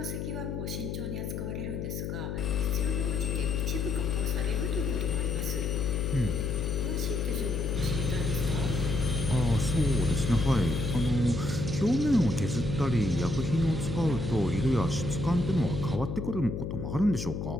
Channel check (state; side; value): noise; left; hum, 4 dB below the sound